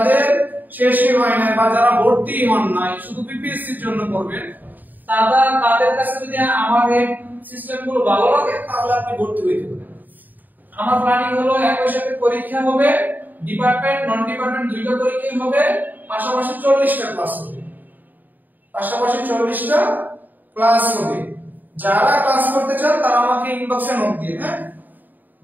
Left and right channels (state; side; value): late; left; 0.087 ms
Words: শেষই হয় না বা যারা ভর্তি হন নাই, শুধু বিপিএসসির জন্য পড়বেন, তাদের কাছে যদি আমার এই সিস্টেমগুলো ভালো লাগে তাহলে আপনি ভর্তি হইতে পারেন। আমার প্ল্যানিং হলো একই সাথে পরীক্ষা হবে, ডিপার্টমেন্ট নন ডিপার্টমেন্ট দুইটা পরীক্ষা হবে, পাশাপাশি 40টা ক্লাস হবে, পাশাপাশি 40টা ক্লাস হবে। যারা ক্লাস করতে চান তারা আমাকে ইনবক্সে নোট দিয়ে, হ্যাঁ